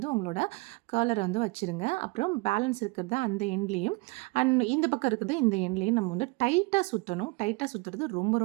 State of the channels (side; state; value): left; quieter; 26.6 dB